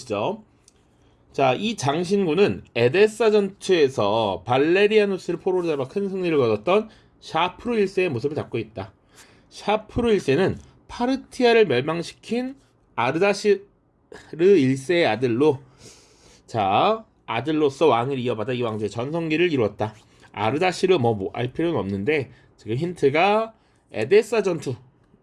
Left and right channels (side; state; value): both; identical; correlation 1.00